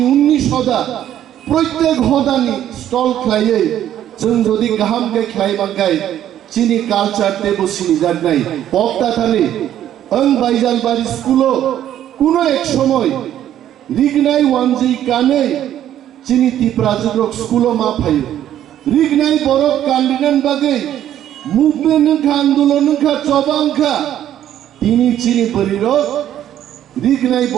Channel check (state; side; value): quieter; left; 11.3 dB